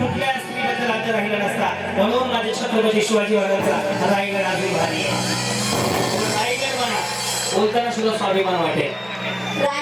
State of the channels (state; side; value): identical; both; correlation 1.00